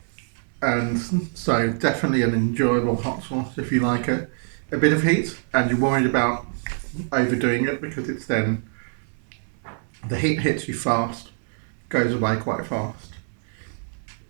And so definitely an enjoyable hot sauce if you like it. A bit of heat, and you're worried about overdoing it because it's then the heat hits you fast, goes away quite fast.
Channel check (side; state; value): left; silent; digital silence